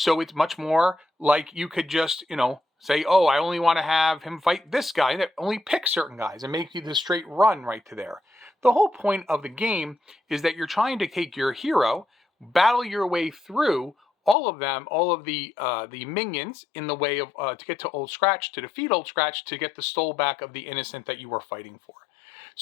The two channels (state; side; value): drops out; right; at 14.4 s